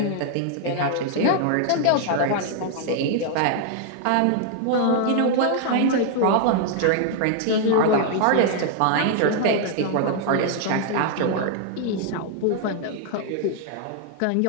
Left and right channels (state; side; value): different; both; correlation 0.00